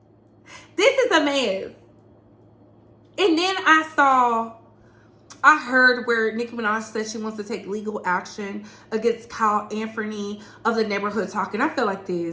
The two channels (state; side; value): identical; both; correlation 1.00